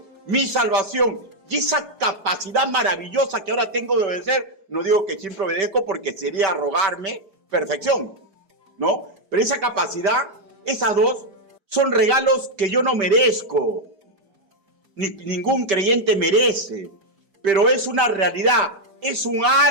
mi salvación y esa capacidad maravillosa que ahora tengo de obedecer. No digo que siempre obedezco porque sería arrogarme perfección, ¿no? Pero esa capacidad, esas dos, son regalos que yo no merezco, ningún creyente merece, pero es una realidad, es un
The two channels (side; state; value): left; late; 4.8 ms